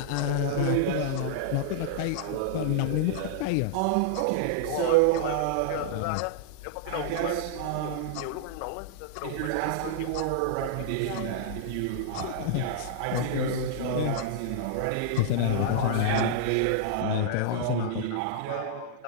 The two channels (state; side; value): different; both; correlation -0.01